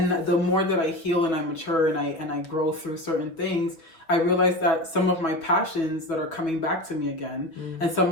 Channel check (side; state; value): right; late; 6.1 ms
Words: the more that I heal and I mature and I grow through certain things, I realize that some of my passions that are coming back to me again, and some